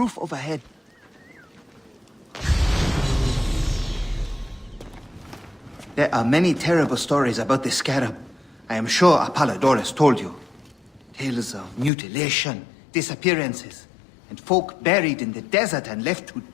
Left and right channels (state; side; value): drops out; right; at 11.9 s